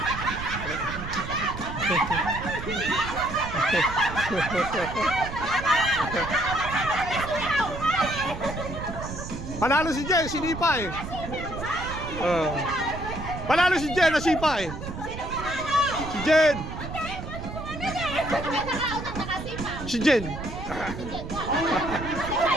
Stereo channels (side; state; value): right; noise; rumble, 8 dB below the sound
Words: Panalo si Jen, sinipa eh. Panalo si Jen, nasipa eh. Si Jen. Si Jen.